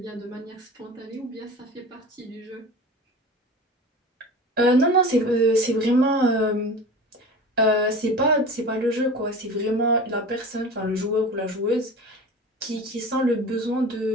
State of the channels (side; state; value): both; normal; correlation 0.35